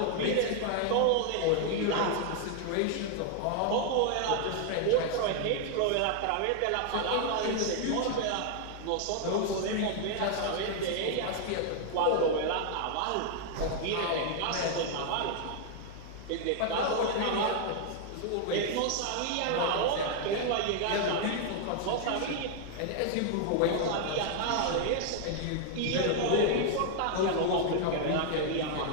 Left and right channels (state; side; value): different; both; correlation 0.00